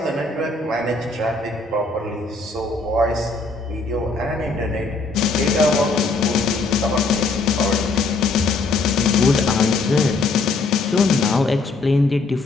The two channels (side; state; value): right; quieter; 3.6 dB